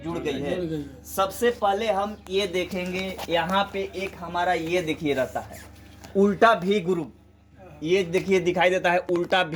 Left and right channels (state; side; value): identical; both; correlation 1.00